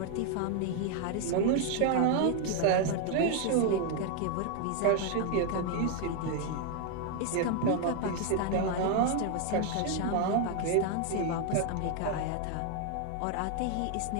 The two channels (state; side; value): different; both; correlation 0.00